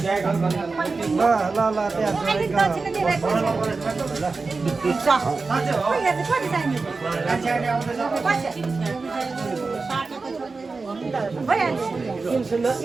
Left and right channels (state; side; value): quieter; left; 4.1 dB